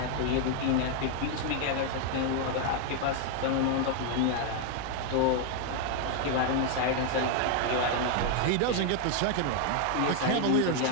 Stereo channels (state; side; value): different; both; correlation 0.00